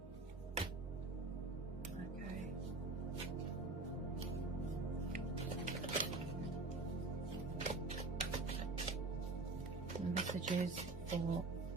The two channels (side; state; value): left; quieter; 3.4 dB